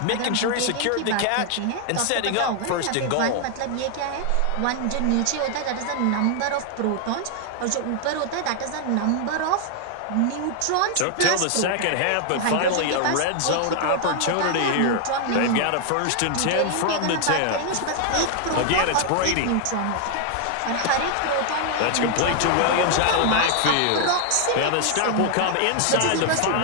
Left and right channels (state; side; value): different; both; correlation 0.00